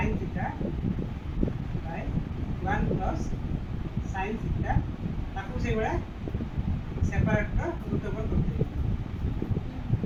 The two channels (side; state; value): both; identical; correlation 1.00